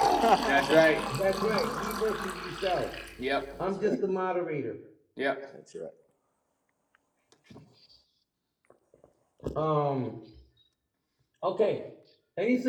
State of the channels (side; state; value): both; identical; correlation 1.00